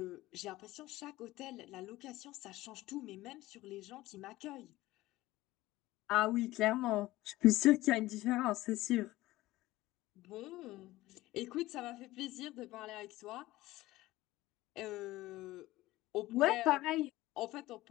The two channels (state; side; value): quieter; right; 17.6 dB